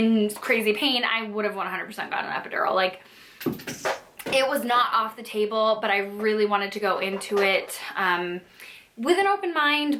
crazy pain, I would have 100% gotten an epidural. Like, it was not off the table, but I really wanted to go into it with an open mind,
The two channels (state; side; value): identical; both; correlation 1.00